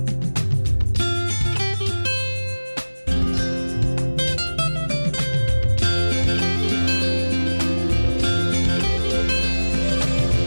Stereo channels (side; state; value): both; inverted; correlation -1.00